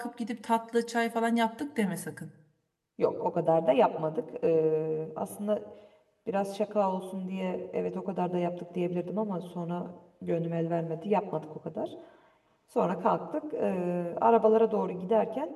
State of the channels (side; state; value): both; identical; correlation 1.00